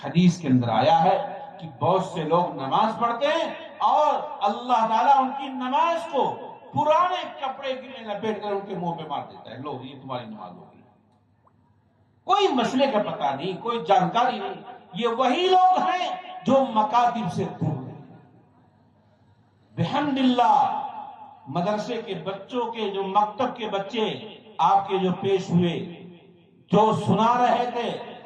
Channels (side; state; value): both; identical; correlation 1.00